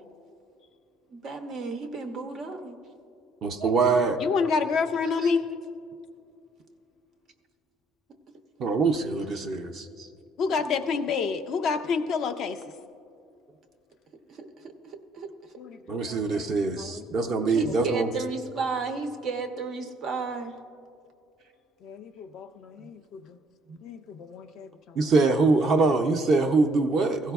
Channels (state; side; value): normal; both; correlation 0.65